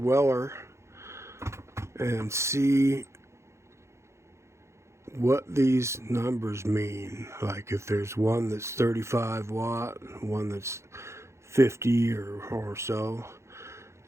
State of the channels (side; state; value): left; late; 0.13 ms